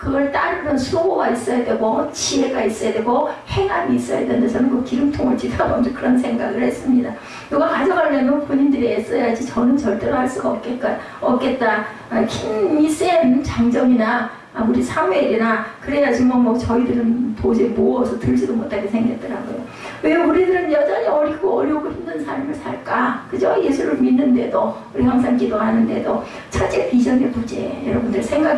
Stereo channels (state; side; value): identical; both; correlation 1.00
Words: 따르는 수고가 있어야 되고 지혜가 있어야 되고 행함이 있어야 되는데 저는 그 기름통을 지나보면서 그런 생각을 했습니다. 누가 가져가려면 본인들이 애써야지 저는 절대로 할 수가 없겠다. 힘이 센 장정이나 우리 사무엘이나 그래야지 뭐 저희들은 도저히 모어서 들지도 못하게 생겼더라고요. 왜 우리들은 여전히 어리고 어려우고 힘든 삶을 살까? 그죠? 예수를 믿는데도 우리 항상 기도하는데도 첫째 비전의 부재 여러분들